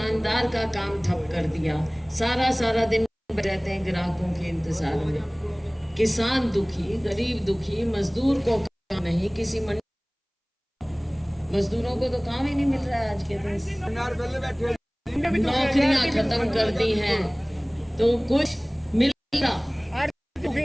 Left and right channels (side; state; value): both; identical; correlation 1.00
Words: का काम ठप कर दिया, सारा दिन रहते हैं ग्राहकों के इंतजार में। किसान दुखी, गरीब दुखी, मजदूर को काम नहीं, किसी मजदूरों को तो काम ही नहीं मिल रहा है आज के दिन, नौकरियां खत्म कर दी हैं तो कुछ मिल रहा।